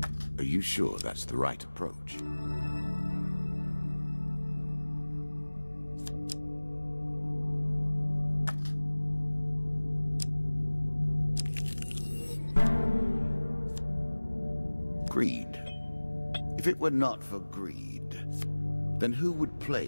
Are you sure that's the right approach? Greed. If it were not for greed, then who would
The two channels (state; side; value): inverted; both; correlation -1.00